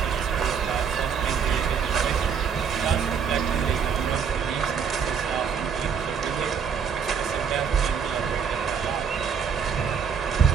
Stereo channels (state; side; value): quieter; left; 6.7 dB